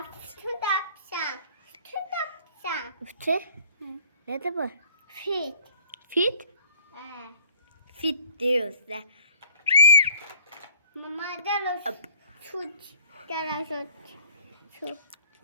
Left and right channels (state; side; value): inverted; both; correlation -0.55